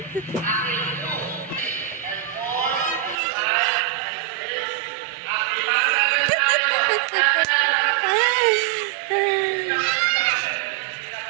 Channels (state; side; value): drops out; left; at 3.2 s